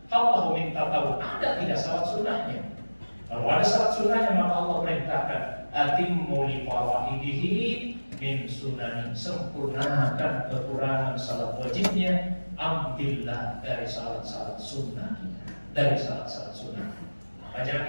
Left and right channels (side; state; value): both; inverted; correlation -1.00